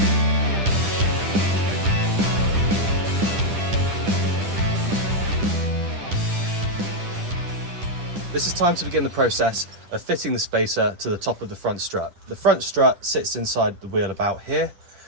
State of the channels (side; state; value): left; late; 10 ms